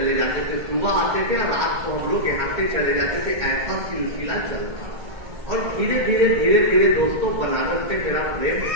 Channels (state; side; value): late; left; 2.1 ms